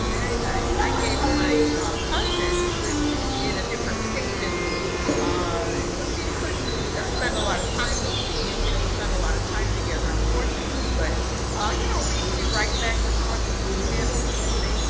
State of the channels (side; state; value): both; identical; correlation 1.00